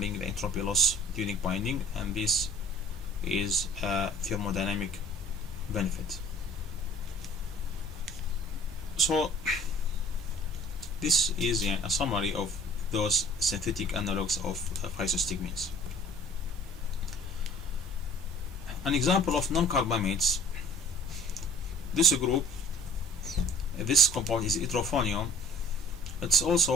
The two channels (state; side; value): normal; both; correlation 0.48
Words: the entropy loss during binding, and this is a thermodynamic benefit. So this is a summary of those synthetic analogs of physostigmines. An example of non-carbamates, this compound is hydrophonium. It's